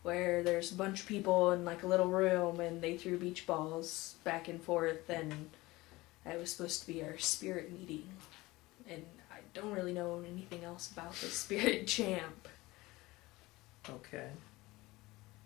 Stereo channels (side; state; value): right; quieter; 20.2 dB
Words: where there's a bunch of people in like a little room and they threw beach balls back and forth, and it was supposed to be our spirit meeting. And I don't really know anything else about the Spirit Champ. Okay.